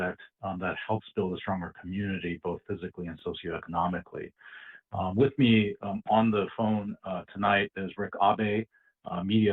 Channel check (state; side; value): identical; both; correlation 1.00